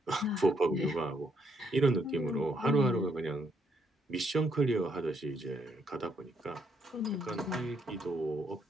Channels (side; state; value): both; normal; correlation 0.73